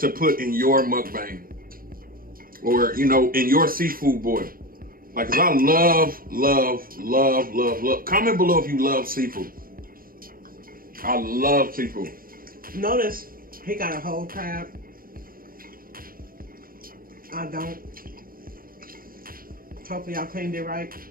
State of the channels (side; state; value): left; late; 0.42 ms